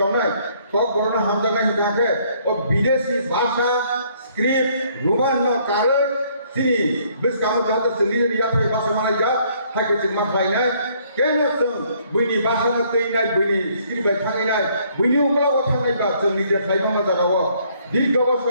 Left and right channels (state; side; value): inverted; both; correlation -0.65